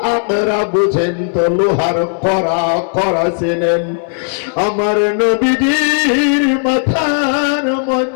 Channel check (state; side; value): silent; right; digital silence